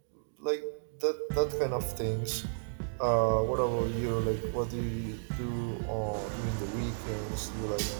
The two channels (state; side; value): silent; left; digital silence